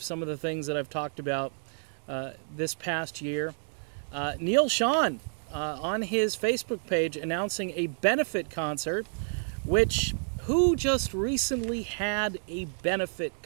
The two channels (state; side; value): silent; left; digital silence